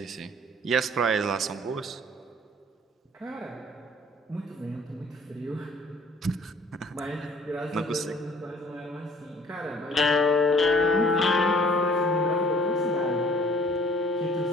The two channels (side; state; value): both; normal; correlation 0.55